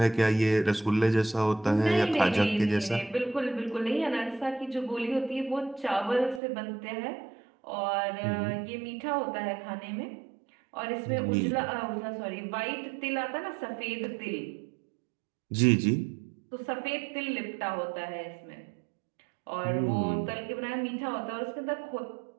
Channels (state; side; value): drops out; left; at 6.4 s